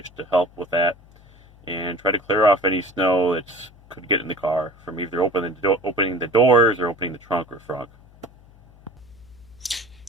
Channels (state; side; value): noise; left; hum, 25 dB below the sound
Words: to help with that. and try to clear off any snow that could get in the car from either opening the doors or opening the trunk or front.